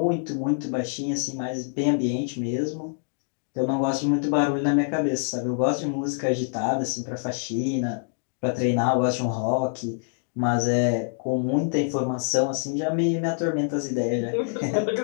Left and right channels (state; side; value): silent; right; digital silence